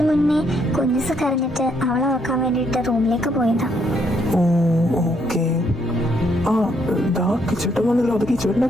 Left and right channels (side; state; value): both; normal; correlation 0.72